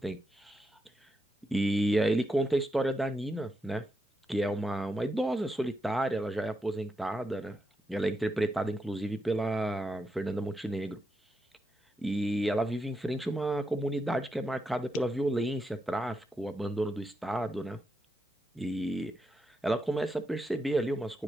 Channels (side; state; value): both; normal; correlation 0.85